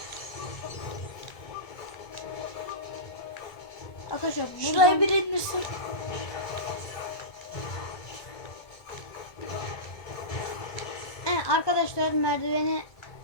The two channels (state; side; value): late; right; 1.2 ms